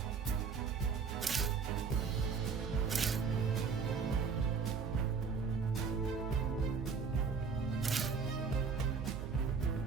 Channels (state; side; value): quieter; left; 5.5 dB